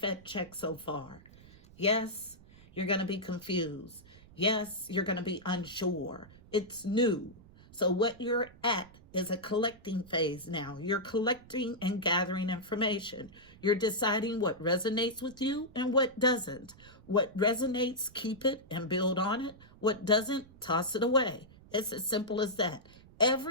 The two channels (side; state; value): right; noise; rumble, 23 dB below the sound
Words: check so far. Yes, you're going to be confused. Yes, you're going to be unsure. It's new. So what you're at is a collecting phase now. You're collecting and gathering information. You're deciding what resonates with you and what doesn't. What resonates, keep it and build on it. What doesn't, toss it away. It's as simple as that.